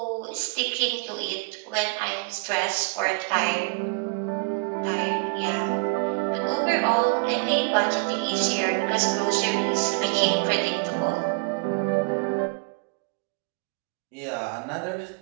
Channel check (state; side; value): quieter; left; 34.6 dB